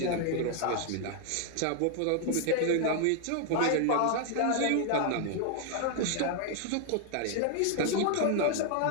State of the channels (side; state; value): both; different; correlation 0.00